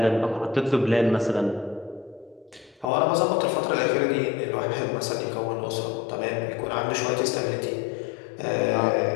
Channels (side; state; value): right; drops out; at 2.9 s